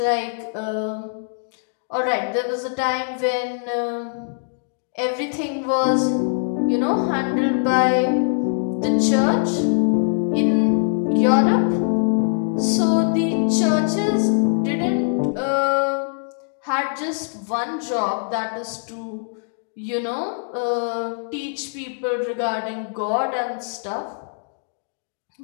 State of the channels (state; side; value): silent; right; digital silence